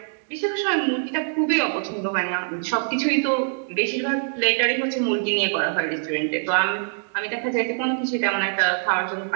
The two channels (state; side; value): silent; left; digital silence